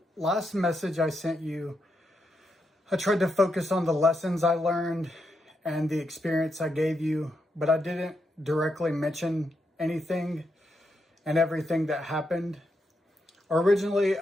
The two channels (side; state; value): both; normal; correlation 0.83